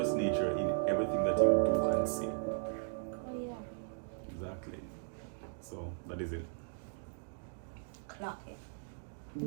nature in everything that you do and say. Oh yeah. Exactly. So that is it. Clock it.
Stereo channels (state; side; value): silent; left; digital silence